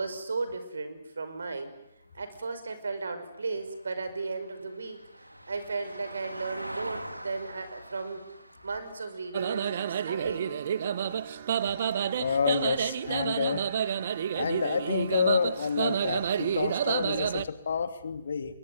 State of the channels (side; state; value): both; inverted; correlation -0.73